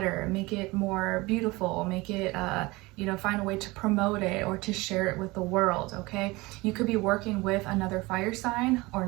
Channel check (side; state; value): left; quieter; 22.4 dB